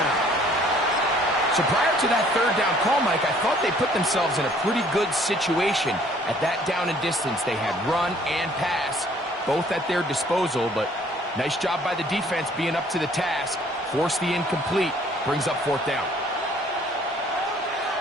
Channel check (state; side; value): normal; both; correlation 0.58